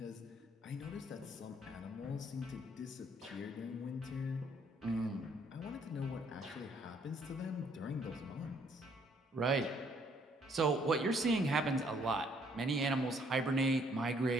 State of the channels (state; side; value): normal; both; correlation 0.65